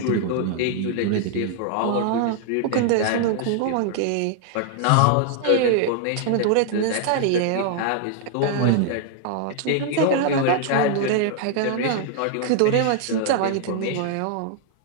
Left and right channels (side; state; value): both; different; correlation 0.00